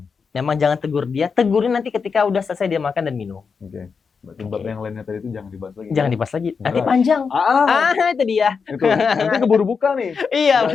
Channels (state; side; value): quieter; right; 5.6 dB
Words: memang jangan tegur dia. Tegurin nanti ketika udah selesai dia makan dan minum. Berarti bab yang lainnya tadi itu jangan dibahas lagi. Jangan dibahas lagi. Nanti panjang. Itu dia. Itu. Nanti keburu buka nih. Iya